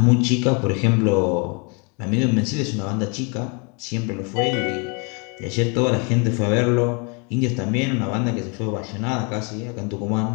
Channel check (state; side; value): quieter; right; 33.5 dB